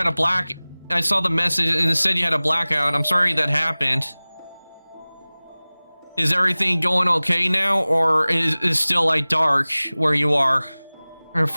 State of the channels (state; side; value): inverted; both; correlation -0.99